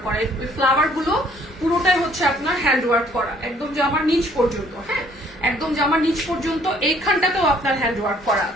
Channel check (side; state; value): both; normal; correlation 0.60